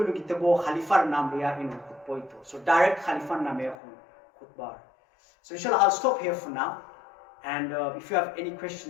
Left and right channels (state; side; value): drops out; right; at 3.8 s